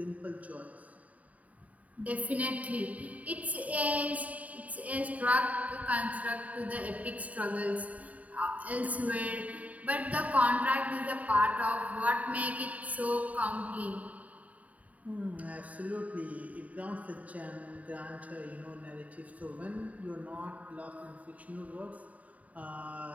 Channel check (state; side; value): late; left; 0.070 ms